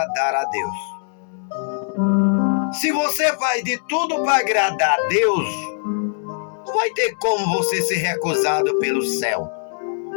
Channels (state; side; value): silent; right; 65 dB below the other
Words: a Deus. Se você faz de tudo para agradar a Deus, não vai ter como você ser recusado pelo céu.